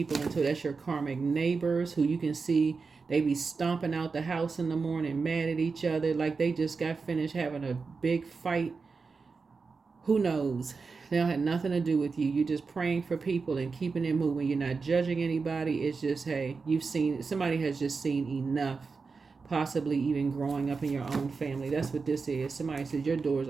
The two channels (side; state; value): left; quieter; 4.7 dB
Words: into. That's your karmic neighbors who you can see they be stomping out the house in the morning, mad at each other, like they just got finished having a big fight. Who knows? They don't have nothing to do with you. You're just praying for people and keeping it moving. You're not judging anybody. It's just, hey, somebody has just seen enough, possibly even growing up in your own family. That's what this is. Somebody says your doors